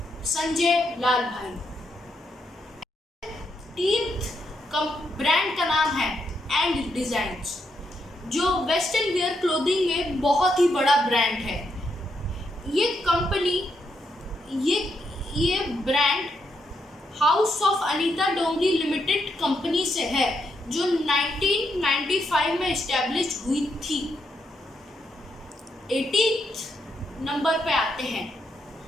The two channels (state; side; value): normal; both; correlation 0.80